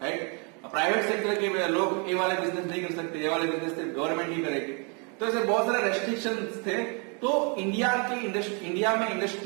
राइट। प्राइवेट सेक्टर के लोग ये वाले बिजनेस नहीं कर सकते, ये वाले बिजनेस गवर्नमेंट ही करेगी। तो ऐसे बहुत सारे रेस्ट्रिक्शंस थे। तो इंडिया में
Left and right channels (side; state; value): left; quieter; 35.5 dB